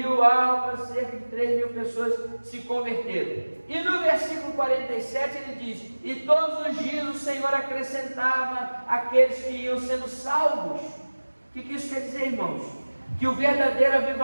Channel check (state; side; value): inverted; both; correlation -1.00